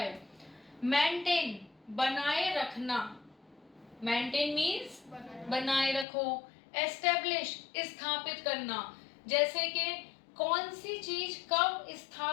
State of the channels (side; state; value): right; drops out; at 6.1 s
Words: मेंटेन बनाए रखना। मेंटेन मीन्स बनाए रखो। एस्टेब्लिश स्थापित करना, जैसे कि कौन सी चीज कब